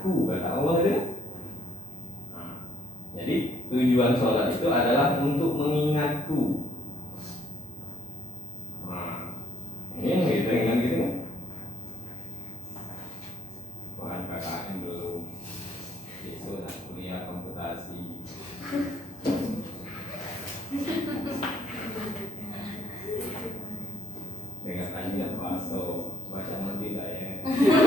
kata Allah itu. Jadi tujuan sholat itu adalah untuk mengingatku. Ini gitu kan gitu kan? KKN belum, besok nak kuliah komputasi. Dengan tanya paso baca mandi tak ya?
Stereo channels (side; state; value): both; normal; correlation 0.70